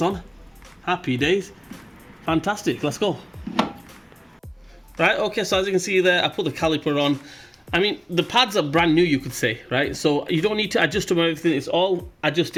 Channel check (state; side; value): identical; both; correlation 1.00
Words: on. Happy days. Fantastic, let's go. Right, okay, so as you can see there, I put the caliper on. I mean, the pads are brand new, you could say, right? So you don't need to adjust them or anything. It's all